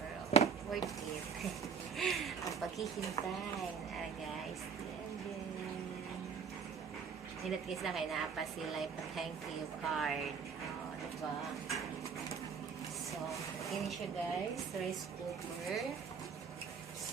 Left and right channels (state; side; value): quieter; left; 6.2 dB